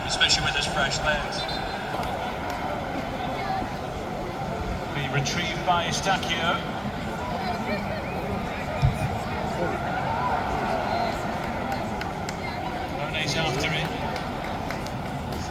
especially with his fresh legs. Be retrieved by Stacchio. Rone's after it.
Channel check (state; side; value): identical; both; correlation 1.00